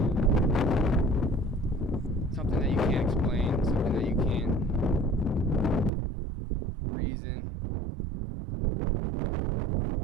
something that you can't explain, something that you can't reason,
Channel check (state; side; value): drops out; left; at 5.9 s